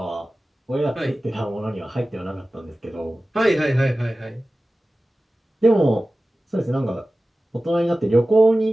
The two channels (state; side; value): normal; both; correlation 0.96